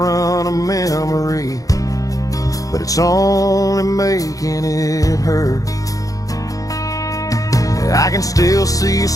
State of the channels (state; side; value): late; right; 0.17 ms